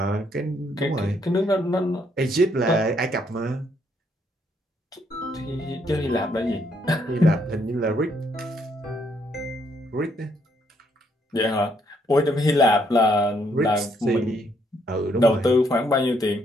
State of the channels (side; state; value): both; normal; correlation 0.72